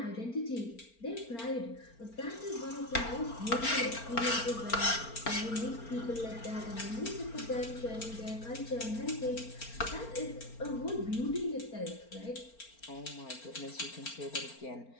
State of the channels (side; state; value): right; late; 4.4 ms